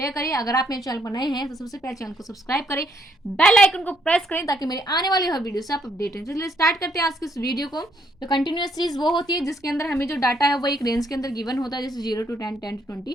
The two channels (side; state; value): both; normal; correlation 0.71